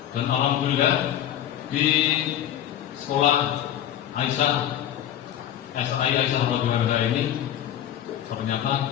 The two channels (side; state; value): right; quieter; 11.3 dB